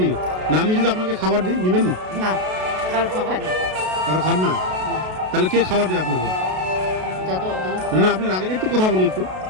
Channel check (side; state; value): left; late; 32 ms